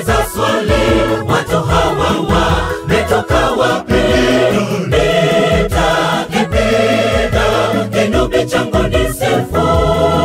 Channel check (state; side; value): identical; both; correlation 1.00